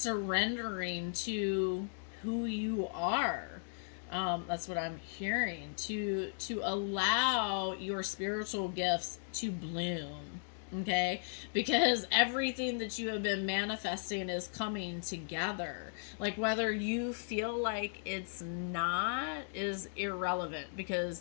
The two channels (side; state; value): right; silent; digital silence